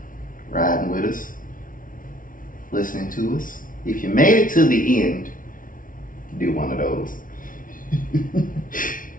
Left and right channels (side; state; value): right; late; 0.39 ms